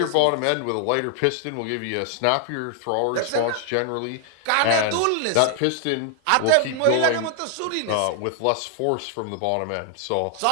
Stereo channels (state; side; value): different; both; correlation 0.00